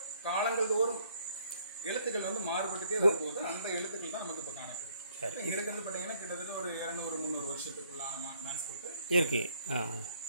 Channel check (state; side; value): inverted; both; correlation -0.66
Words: காலங்கள் தோறும் எழுத்துக்கள் வந்து மாறுபட்டுட்டே வரும்போது அந்த எழுத்துக்கள் தான் நமக்கு இப்ப காணப்படுது. இங்க இருக்கிறது பாத்தீங்கன்னா கிட்டத்தட்ட ஒரு 200-300 வருஷத்துக்குள்ளான மேன்ஸ்கிரிப்ட் இருக்கு.